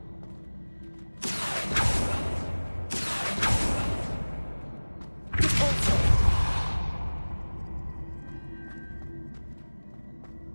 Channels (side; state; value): both; inverted; correlation -1.00